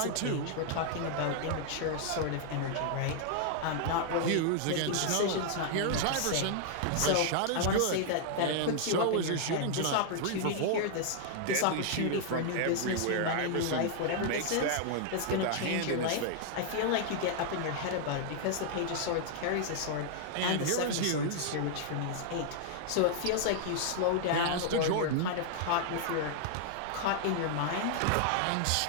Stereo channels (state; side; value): different; both; correlation -0.01